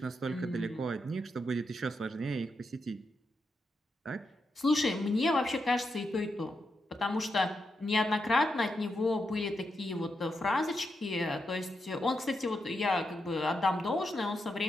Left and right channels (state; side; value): normal; both; correlation 0.84